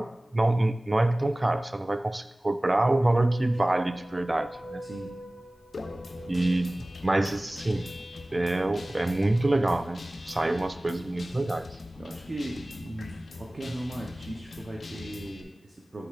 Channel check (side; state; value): both; normal; correlation 0.98